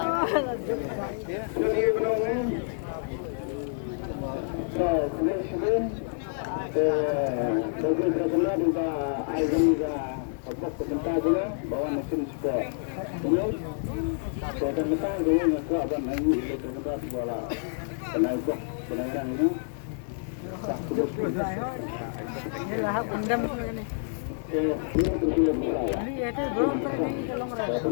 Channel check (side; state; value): right; silent; 55 dB below the other